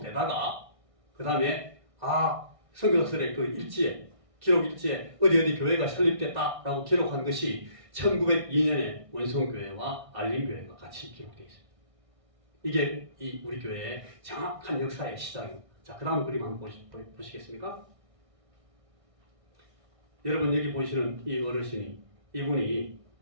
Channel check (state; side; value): late; left; 1.6 ms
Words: 되다가 그 다음에 선교사들의 그 일지에 기록 일지에 어디 교회가 설립됐다라고 기록한 것이 1902년에 원성교회와 알림교회가 같이 기록되어 있습니다. 이게 이 우리 교회의 정확한 역사의 시작입니다. 자, 그 다음 그림 한번 보시겠습니까? 여러분 여기 보시는 이 어르신이 이분이